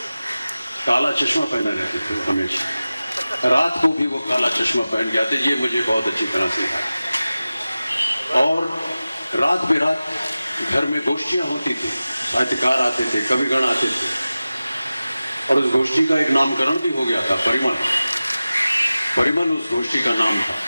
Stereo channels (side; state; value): both; inverted; correlation -0.96